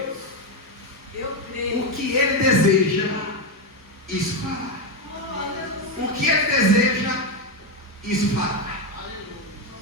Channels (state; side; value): normal; both; correlation 0.09